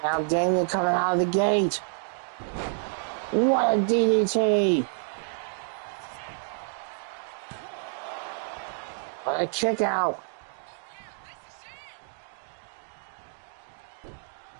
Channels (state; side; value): silent; left; digital silence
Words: Now Damien coming out of the gate. What a DDT. What a kick out.